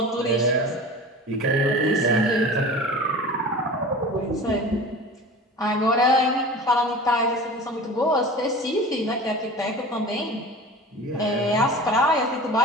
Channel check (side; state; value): both; normal; correlation 0.36